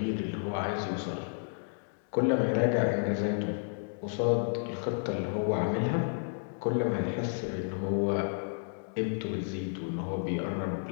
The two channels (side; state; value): right; silent; digital silence